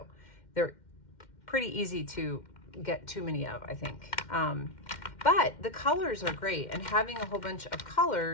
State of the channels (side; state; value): right; late; 2.1 ms